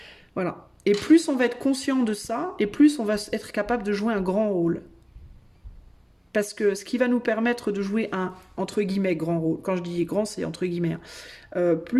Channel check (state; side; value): identical; both; correlation 1.00